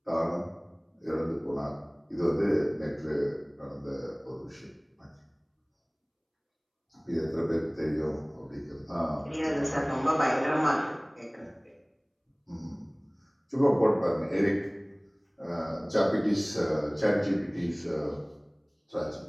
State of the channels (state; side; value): identical; both; correlation 1.00